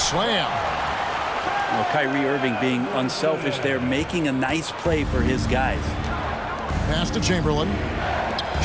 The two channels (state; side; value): identical; both; correlation 1.00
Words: Well, Kyrie Irving being unselfish there, making a nice play for his guys. Pass to Chamberlain.